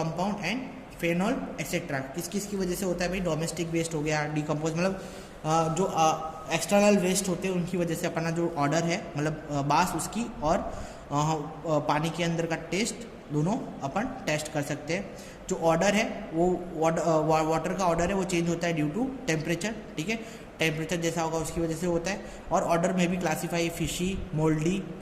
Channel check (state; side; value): identical; both; correlation 1.00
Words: and phenol etcetera. किस किस की वजह से होता है भाई? डोमेस्टिक वेस्ट हो गया, डिकम्पोज मतलब जो एक्सटर्नल वेस्ट होते हैं उनकी वजह से अपना जो ऑर्डर है मतलब बास उसकी और पानी के अंदर का टेस्ट दोनों अपन टेस्ट कर सकते हैं। जो ऑर्डर है वो वाटर का ऑर्डर है वो चेंज होता है ड्यू टू टेम्परेचर। ठीक है, टेम्परेचर जैसा होगा उसकी वजह से होता है। और ऑर्डर में भी classify fishy, mouldy,